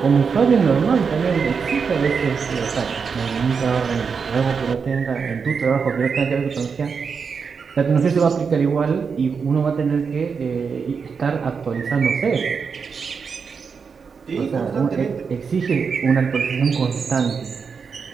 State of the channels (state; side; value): quieter; left; 5.7 dB